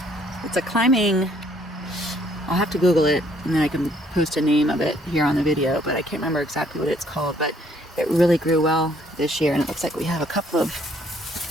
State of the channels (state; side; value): normal; both; correlation 0.64